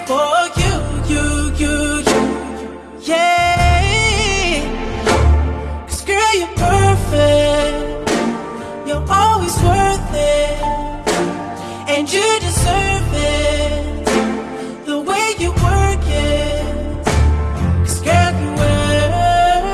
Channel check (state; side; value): identical; both; correlation 1.00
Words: for you. Yeah. 'Cause girl, you're perfect. You're always worth it. And you deserve it, the way you work it. 'Cause girl, you